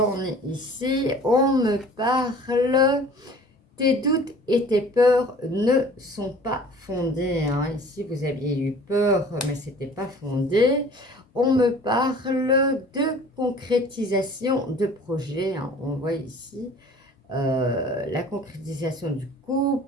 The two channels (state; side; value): normal; both; correlation 0.48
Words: ai ici, on me parle, tes doutes et tes peurs ne sont pas fondés. Hein. Ici vous aviez eu peur, mais c'était pas fondé. On me parle de concrétisation de projet. Hein. On voit ici la concrétisation du